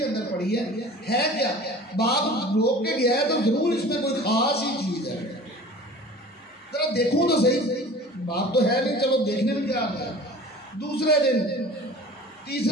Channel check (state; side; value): normal; both; correlation 0.42